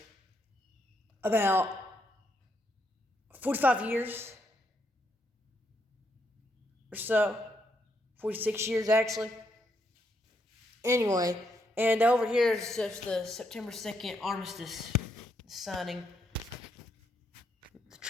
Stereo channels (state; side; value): normal; both; correlation 0.77